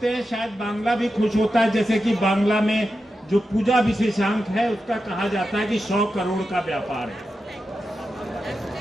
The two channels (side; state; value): both; normal; correlation 0.90